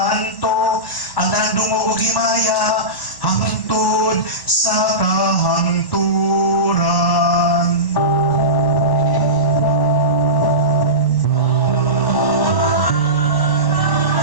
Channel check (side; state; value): right; late; 1.1 ms